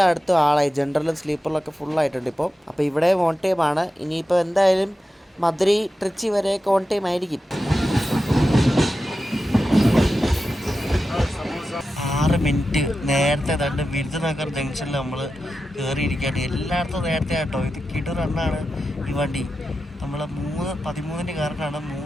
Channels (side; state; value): both; normal; correlation 0.91